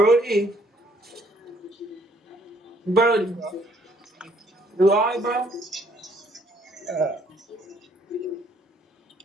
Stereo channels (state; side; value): normal; both; correlation 0.65